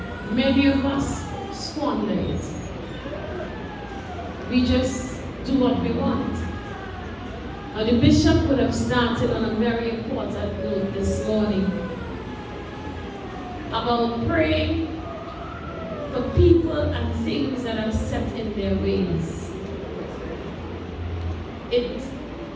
many of us squander it. We just do what we want. Now the bishop would have started on a very important note this morning about praying for people and things that are set in their ways. It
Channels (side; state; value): both; identical; correlation 1.00